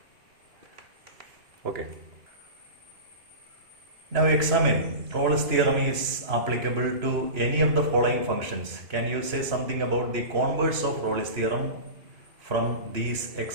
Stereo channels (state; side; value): late; left; 2.9 ms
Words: Okay. Now examine Rolle's theorem is applicable to any of the following functions. Can you say something about the converse of Rolle's theorem from these